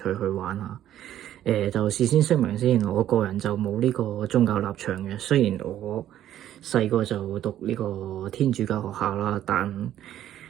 去玩下。就事先聲明先，我個人就冇呢個宗教立場嘅，雖然我細個就讀呢個天主教學校啦，但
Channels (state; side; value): quieter; left; 11.9 dB